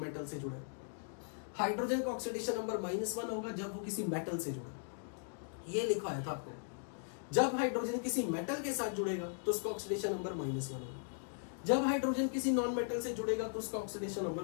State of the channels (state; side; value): silent; right; digital silence